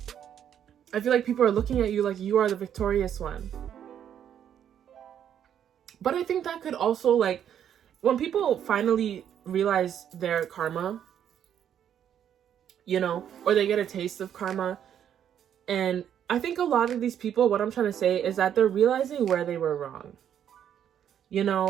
I feel like people are looking at you like you are the victorious one. But I think that could also, like, when people finally realize their karma, you know, or they get a taste of karma, and I think a lot of these people, what I'm trying to say is that they're realizing where they were wrong. You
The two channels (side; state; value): left; quieter; 9.5 dB